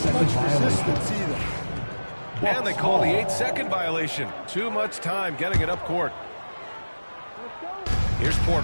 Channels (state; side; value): inverted; both; correlation -1.00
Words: much resistance either. And they call the 8-second violation. Too much time getting it up court. Here's